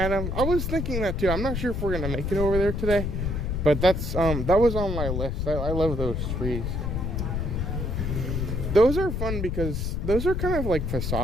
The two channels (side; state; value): left; noise; rumble, 1 dB below the sound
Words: I was thinking that too. I'm not sure if we're gonna make it over there today, but that was on my list. I love those trees. Those are fun because those are kind of like